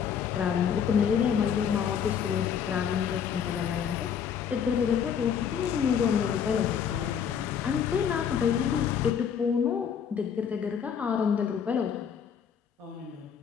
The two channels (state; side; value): quieter; right; 7.8 dB